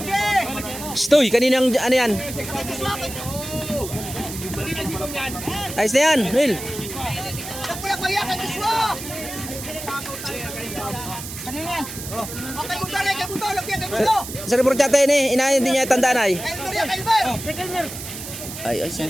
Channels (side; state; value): right; noise; hiss, 10 dB below the sound